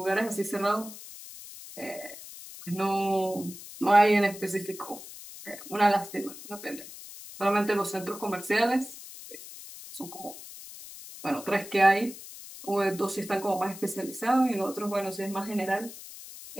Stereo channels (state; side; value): noise; left; hiss, 14 dB below the sound